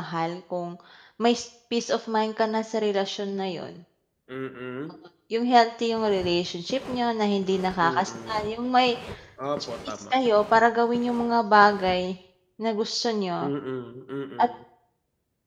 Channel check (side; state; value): both; identical; correlation 1.00